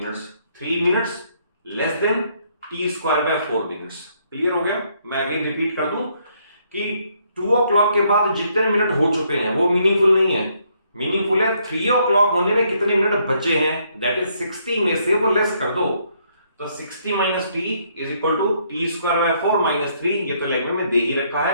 3 minutes less than t square by 4 minutes। Clear हो गया? मैं अगेन रिपीट कर दूं कि 2 o'clock के बाद जितने मिनट हो चुके हैं वो मीनिंगफुल नहीं है, मीनिंगफुल है 3 o'clock होने में कितने मिनट बचे हैं, दैट इज 60 में से वो लेस कर दो। तो 60 minus t is equal to t square by 4 minus 3, ये तो लैंग्वेज में दे ही रखा है।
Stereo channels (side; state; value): both; inverted; correlation -0.70